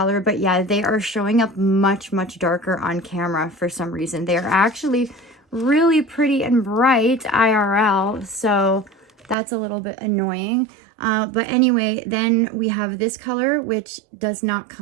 But yeah, they are showing up much darker on camera for some reason. They are actually really pretty and bright IRL. So that's a little bit annoying. But anyway, then we have this color, which does not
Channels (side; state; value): left; drops out; at 9.3 s